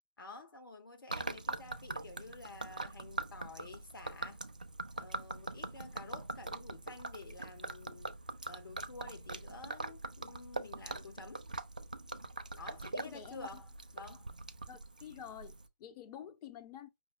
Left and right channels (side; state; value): both; inverted; correlation -0.52